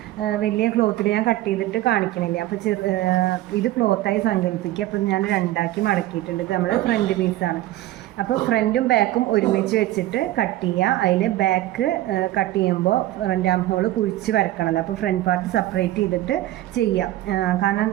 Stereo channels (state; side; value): quieter; left; 15.5 dB